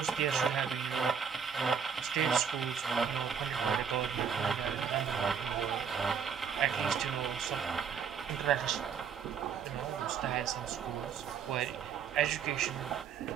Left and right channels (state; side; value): quieter; left; 7.0 dB